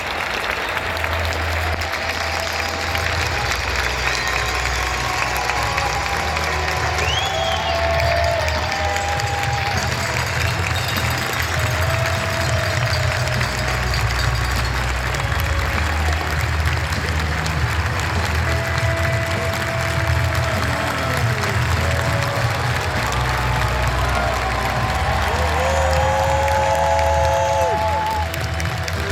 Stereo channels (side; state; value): both; identical; correlation 1.00